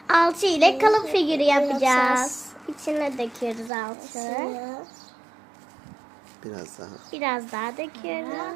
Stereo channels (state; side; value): drops out; left; at 3.7 s